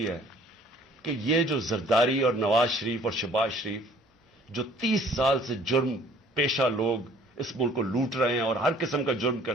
ہے کہ یہ جو زرداری اور نواز شریف اور شہباز شریف جو 30 سال سے جرم پیشہ لوگ اس ملک کو لوٹ رہے ہیں اور ہر قسم کا جرم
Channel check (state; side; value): normal; both; correlation 0.55